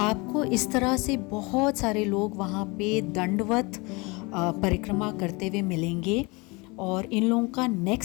आपको इस तरह से बहुत सारे लोग वहाँ पे दंडवत परिक्रमा करते हुए मिलेंगे और इन लोगों का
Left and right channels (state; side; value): quieter; right; 26.6 dB